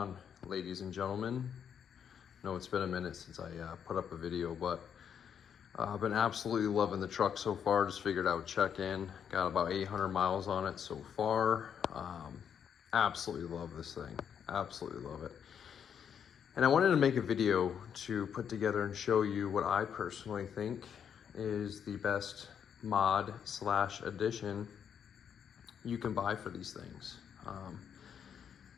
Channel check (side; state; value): right; quieter; 8.0 dB